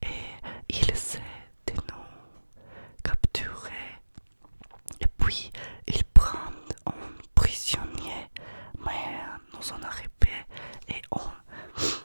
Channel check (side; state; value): both; inverted; correlation -1.00